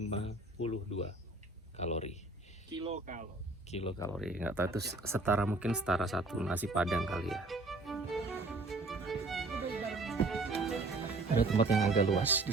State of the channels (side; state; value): left; quieter; 3.1 dB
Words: kalori. Kilokalori. Nggak tahu itu setara, mungkin setara 1 nasi padang kali ya. Ada tempat yang agak luas